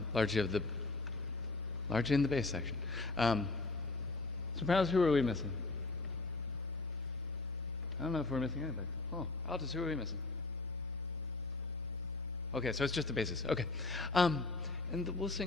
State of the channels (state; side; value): quieter; right; 3.3 dB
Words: Largely in the bass section. Sopranos, who are we missing? I don't know if we're missing anything. Oh, altos, who are we missing? Okay, so it's just the basses. Okay. And we'll